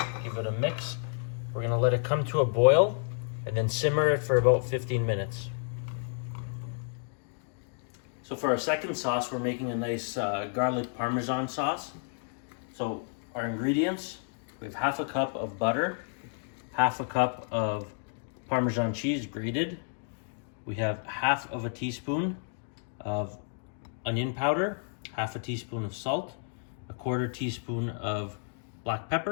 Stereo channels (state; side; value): silent; right; 57 dB below the other